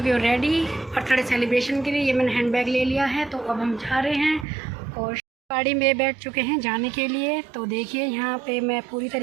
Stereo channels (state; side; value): drops out; left; at 4.5 s